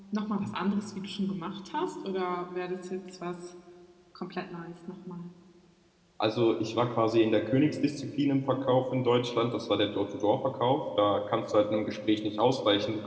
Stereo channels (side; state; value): both; identical; correlation 1.00